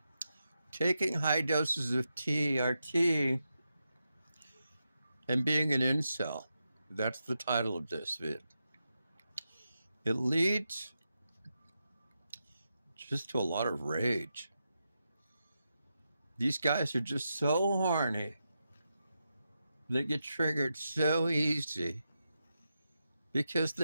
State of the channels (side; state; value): both; inverted; correlation -0.87